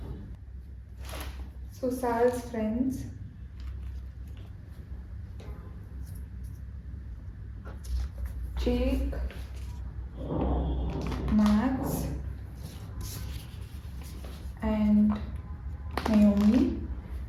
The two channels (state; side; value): identical; both; correlation 1.00